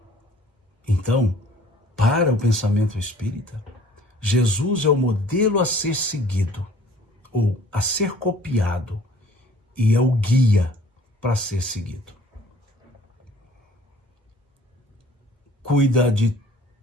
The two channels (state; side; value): normal; both; correlation 0.53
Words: Então, para o pensamento espírita, Jesus é o modelo a ser seguido, ou a ser copiado, e é o guia para ser seguido. Cuida de